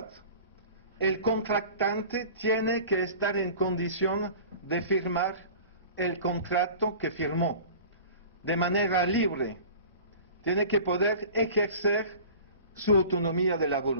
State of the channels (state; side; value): inverted; both; correlation -0.41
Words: El contratante tiene que estar en condición de firmar el contrato que firmó de manera libre. Tiene que poder ejercer su autonomía de la